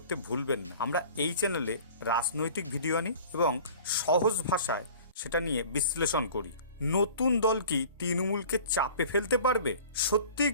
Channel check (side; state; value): both; inverted; correlation -0.44